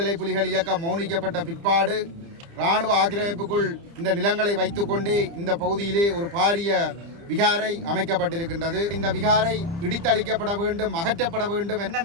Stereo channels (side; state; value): left; late; 30 ms